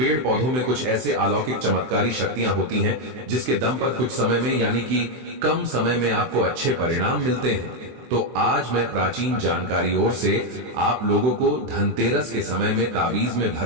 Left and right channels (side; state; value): left; late; 24 ms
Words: पौधों में कुछ ऐसे अलौकिक चमत्कारी शक्तियां होती हैं जिसके दम पर कुछ समय में, यानी कि कम समय में आपको अच्छे परिणाम मिलते हैं। तो आज मैं प्राचीन जानकारी ओर से आप लोगों को धनतेरस के समय में ताबीज में